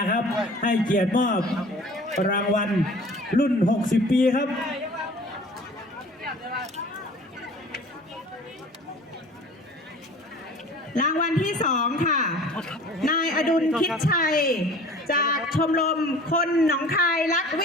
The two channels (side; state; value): both; normal; correlation 0.45